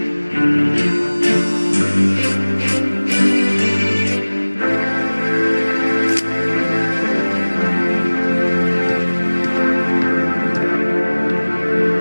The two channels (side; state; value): both; inverted; correlation -1.00